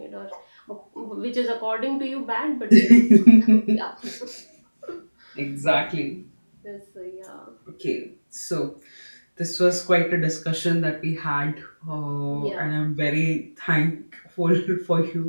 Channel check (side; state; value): both; inverted; correlation -1.00